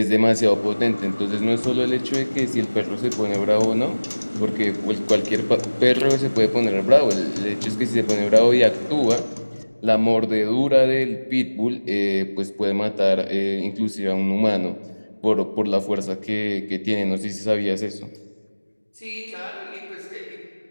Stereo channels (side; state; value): both; inverted; correlation -1.00